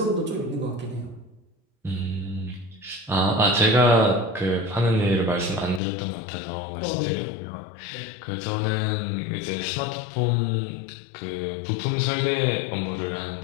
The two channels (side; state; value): right; drops out; at 5.8 s